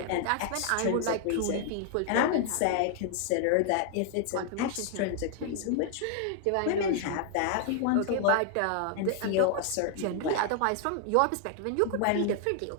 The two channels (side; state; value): both; different; correlation 0.00